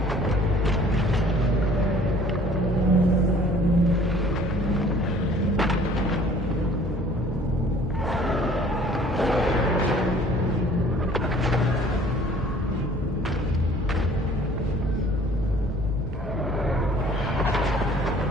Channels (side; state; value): both; normal; correlation 0.53